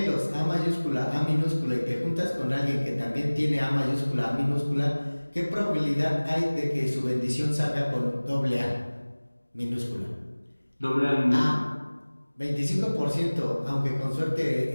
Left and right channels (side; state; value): both; inverted; correlation -1.00